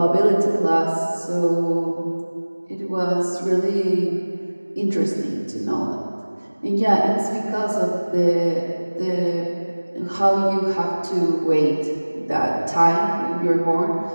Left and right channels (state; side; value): inverted; both; correlation -1.00